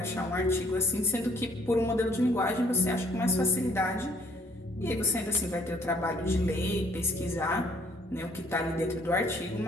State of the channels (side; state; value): both; normal; correlation 0.63